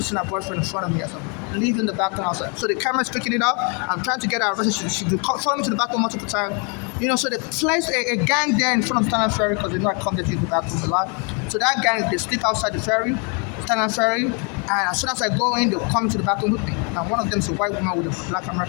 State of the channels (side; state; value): right; quieter; 35.4 dB